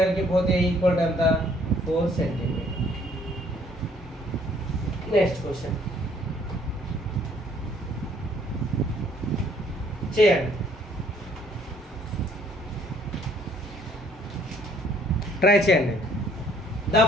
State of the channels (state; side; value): normal; both; correlation 0.62